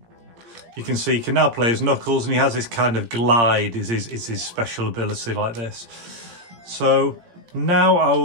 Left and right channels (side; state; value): left; late; 17 ms